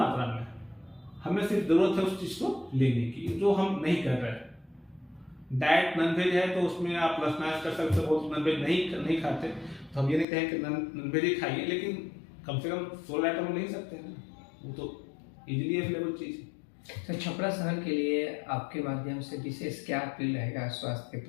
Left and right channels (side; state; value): right; drops out; at 10.2 s